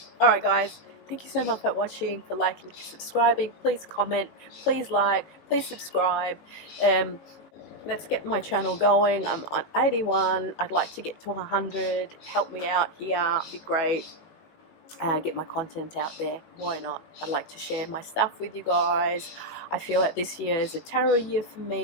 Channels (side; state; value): right; late; 19 ms